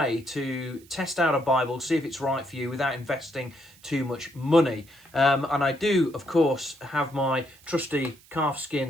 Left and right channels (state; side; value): noise; right; hiss, 26 dB below the sound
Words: to test out a Bible, see if it's right for you without investing too much money. And I do, of course, have my trusty